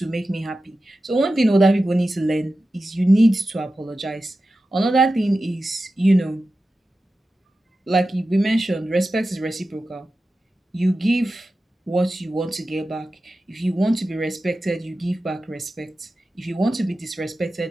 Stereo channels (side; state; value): both; normal; correlation 0.93